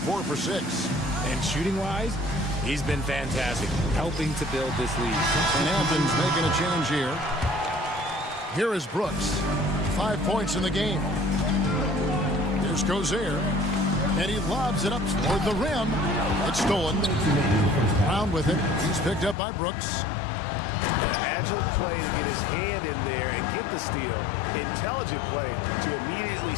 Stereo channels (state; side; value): drops out; right; at 19.4 s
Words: for 6. And shooting-wise, he's been fantastic, helping to build this lead. And Athens making a change here. Here is Brooks. 5 points in the game. Here's Gozer. And he lobs it up toward the rim. It's stolen. Brown with it. He's picked up by Brooks. Agile play to get his hand in there and get the steal. Intelligent play to immediately